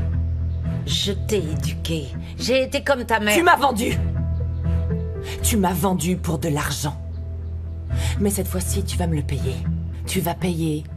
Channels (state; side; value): identical; both; correlation 1.00